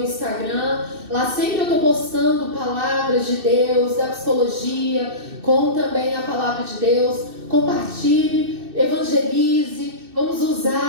Lá sempre eu estou postando palavras de Deus, da psicologia, com também a palavra de Deus. Compartilhe, evangelize. Vamos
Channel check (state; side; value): late; left; 2.6 ms